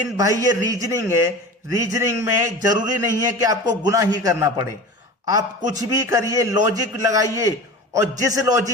भाई ये रीजनिंग है। रीजनिंग में जरूरी नहीं है कि आपको गुना ही करना पड़े। आप कुछ भी करिए, लॉजिक लगाइए, और जिस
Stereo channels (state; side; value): normal; both; correlation 0.34